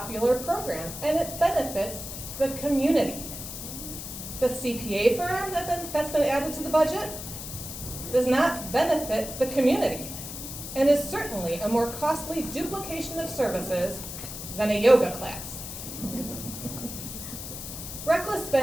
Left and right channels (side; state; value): left; noise; hiss, 9 dB below the sound